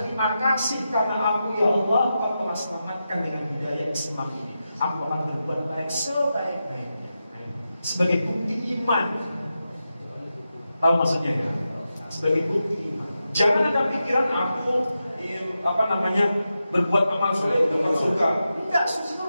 kasih karena aku ya Allah, Engkau telah selamatkan dengan hidayah Islam ini. Aku akan berbuat baik sebaik-baiknya. Sebagai bukti iman. Tahu maksudnya ya? Sebagai bukti iman. Jangan ada pikiran aku berbuat amal soleh dapat surga. Tidak, surga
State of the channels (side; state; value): both; inverted; correlation -0.90